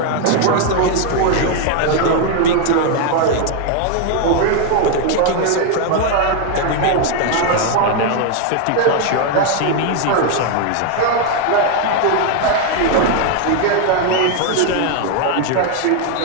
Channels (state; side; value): different; both; correlation 0.01